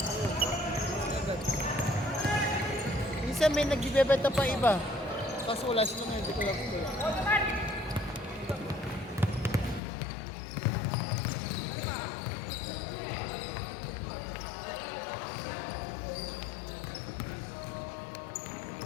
Minsan may nagbibebenta pa iba. Kaso wala sila ngayon, hindi ko lang kung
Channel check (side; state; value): right; drops out; at 9.8 s